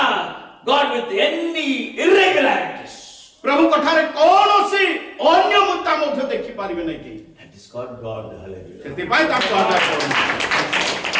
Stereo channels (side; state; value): both; identical; correlation 1.00